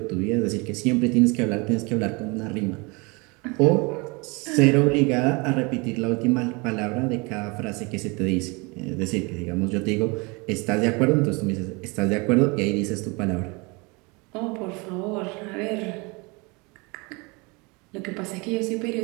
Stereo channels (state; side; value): quieter; left; 28.1 dB